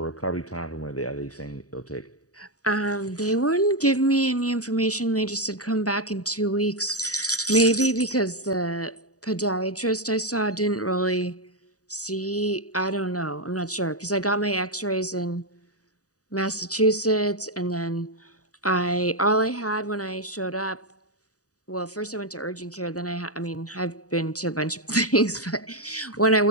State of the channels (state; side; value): late; right; 0.67 ms